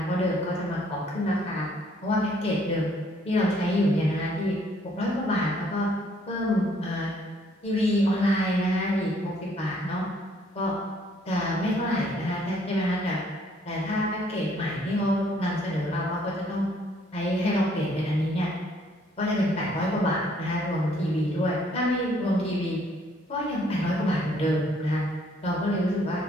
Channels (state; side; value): normal; both; correlation 0.64